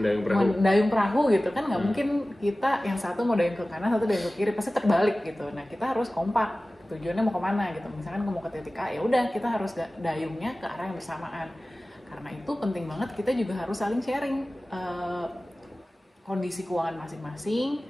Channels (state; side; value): normal; both; correlation 0.97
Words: perahu gitu kan, nggak mungkin kita yang satu mau dayung ke kanan, satu dayung ke kiri, pasti terbalik gitu. Nah, kita harus kompak, tujuannya mau kemana gitu. Misalkan mau ke titik A, ya udah kita harus dayungnya ke arah yang bersamaan. Karena itu penting banget kita juga harus saling sharing kondisi keuangan